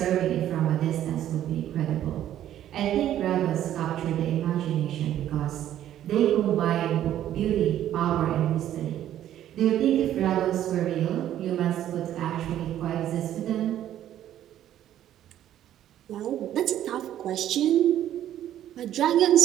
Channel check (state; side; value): quieter; left; 11.7 dB